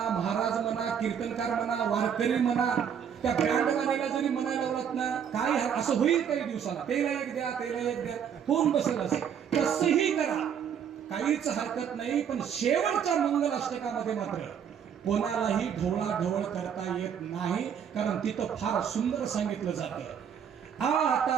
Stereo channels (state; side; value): quieter; left; 8.1 dB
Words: महाराज म्हणा, कीर्तनकार म्हणा, वारकरी म्हणा, त्या बँडवाल्याला जरी म्हणायला लावलात ना, काय असं होईल काही दिवसाला, तेला एक द्या, तेला एक द्या, होऊन बसेल असे. तसंही करा, काहीच हरकत नाही. पण शेवटच्या मंगलाष्टकामध्ये मात्र कोणालाही ढवळाढवळ करता येत नाही, कारण तिथं फार सुंदर सांगितलं जातं.